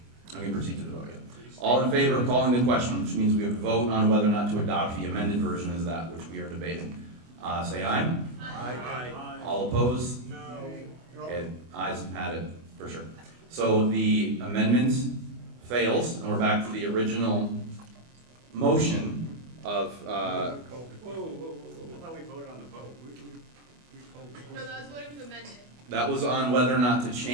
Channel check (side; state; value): left; late; 24 ms